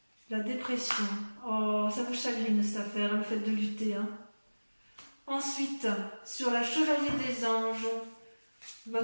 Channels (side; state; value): both; inverted; correlation -1.00